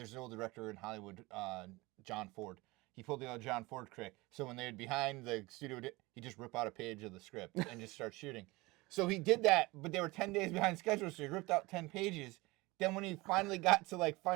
an old director in Hollywood, John Ford. He pulled the old John Ford trick. So when they're behind the studio, he just rip out a page of the script and just start shooting. So he did that, but they were 10 days behind schedule, so he ripped out 10 pages. Then when he finally got to like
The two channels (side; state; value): left; quieter; 22.4 dB